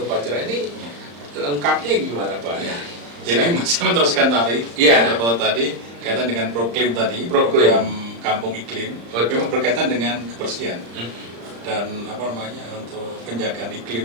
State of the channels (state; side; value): late; left; 35 ms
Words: upacara. Ini lengkapnya gimana Pak? Jadi masih meneruskan tadi, tadi kaitan dengan proklim tadi, program kampung iklim, memang berkaitan dengan kebersihan dan untuk penjagaan